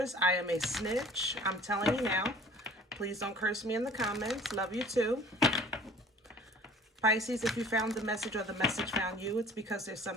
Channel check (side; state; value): both; normal; correlation 0.48